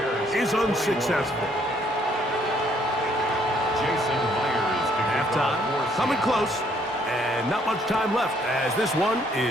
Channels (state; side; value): normal; both; correlation 0.66